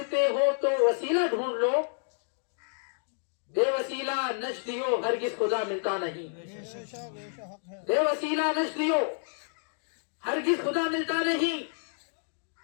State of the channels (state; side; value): silent; right; digital silence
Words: ہو تو وسیلہ ڈھونڈ لو، بے وسیلہ نجدیو ہرگز خدا ملتا نہیں، بے وسیلہ نجدیو ہرگز خدا ملتا نہیں،